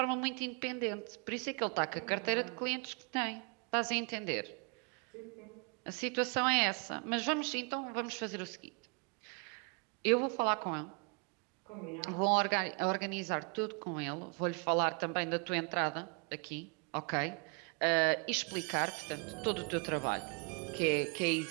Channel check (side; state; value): left; quieter; 34.7 dB